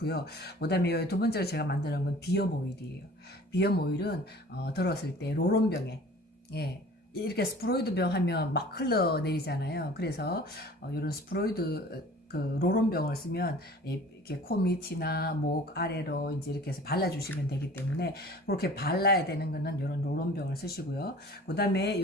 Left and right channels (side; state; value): both; normal; correlation 0.46